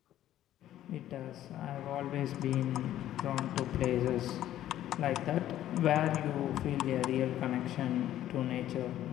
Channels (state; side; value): quieter; right; 12.6 dB